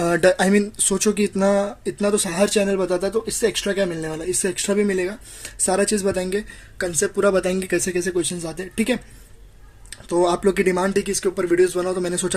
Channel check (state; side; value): identical; both; correlation 1.00